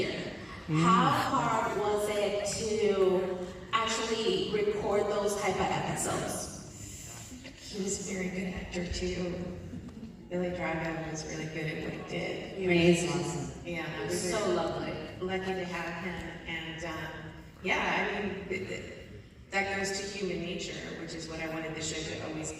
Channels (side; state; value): both; identical; correlation 1.00